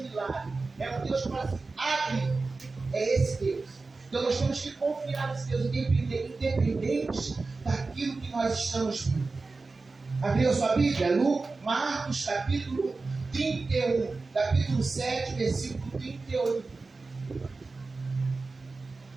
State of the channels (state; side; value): quieter; left; 3.8 dB